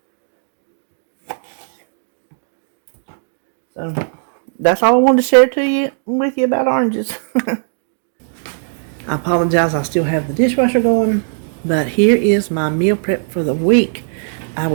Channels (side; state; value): left; silent; digital silence